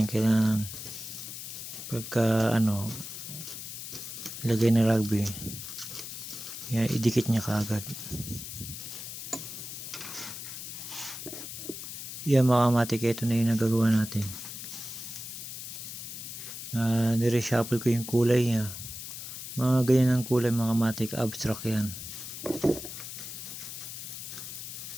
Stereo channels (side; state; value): left; noise; hiss, 9 dB below the sound